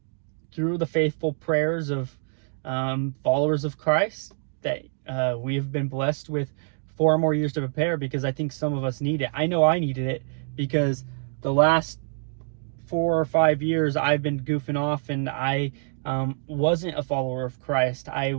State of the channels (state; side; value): silent; left; 55 dB below the other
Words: through the faithful prayers of followers of Christ, that we have been blessed with 4 more years to prepare, because I think some of us need it. I know I needed it, because the last 4 or 5 years I've been goofing off, and I wasn't a follower of Christ. I